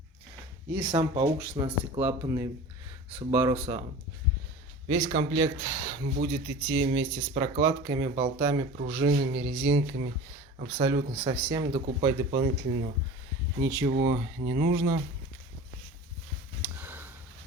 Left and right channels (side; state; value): both; normal; correlation 0.37